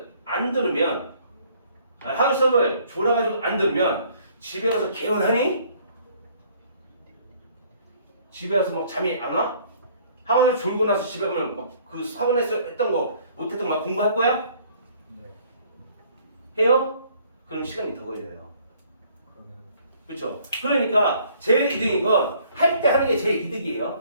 안 들으면 학원 수업을 졸아가지고 안 들으면 집에 가서 개운하니? 집에 가서 막 잠이 안 와? 학원을 졸고 나서 집에 가면 막 그 학원에서 했던 거 못했던 거 막 공부할 거야? 네. 해요? 그럼 시간이 더 걸려요. 그러면 그렇죠? 그러니까 제일 이득인 건 할 때 하는 게 제일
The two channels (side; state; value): both; inverted; correlation -0.59